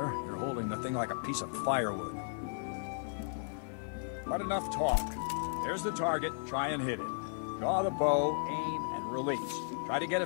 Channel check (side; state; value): right; silent; digital silence